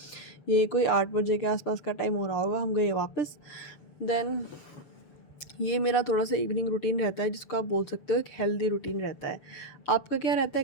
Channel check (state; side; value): late; right; 6.7 ms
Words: ये कोई 8 बजे के आसपास का टाइम हो रहा होगा। हम गए वापस। देन ये मेरा थोड़ा सा इवनिंग रूटीन रहता है, जिसको आप बोल सकते हो एक हेल्दी रूटीन रहता है। आपका क्या रहता है,